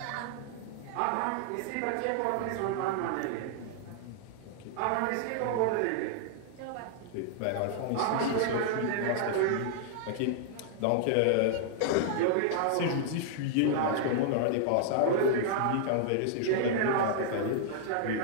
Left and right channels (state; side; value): different; both; correlation -0.01